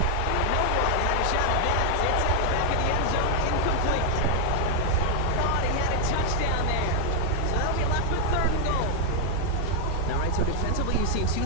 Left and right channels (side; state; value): both; different; correlation 0.00